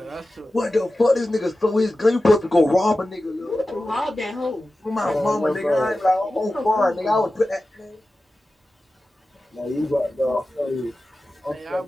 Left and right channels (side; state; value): both; normal; correlation 0.94